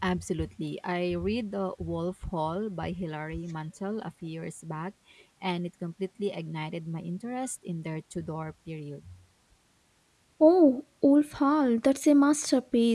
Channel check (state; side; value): identical; both; correlation 1.00